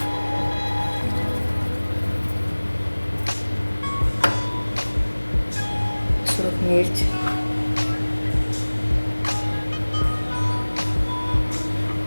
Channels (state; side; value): inverted; both; correlation -1.00